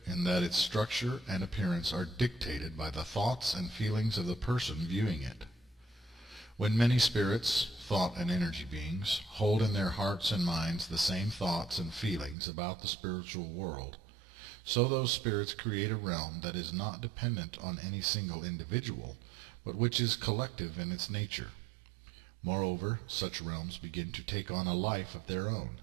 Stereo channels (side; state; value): left; drops out; at 12.4 s